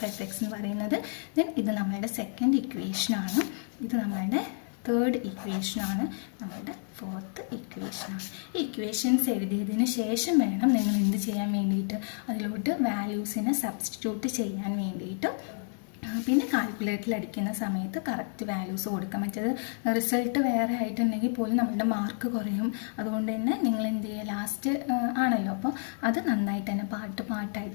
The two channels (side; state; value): right; silent; 58 dB below the other